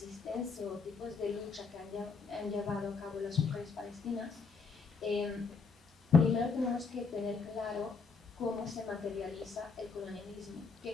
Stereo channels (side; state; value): right; quieter; 4.9 dB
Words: o tipos de lucha que han llevado a cabo las mujeres palestinas, primero tenemos que tener claro cómo se materializa el colonialismo,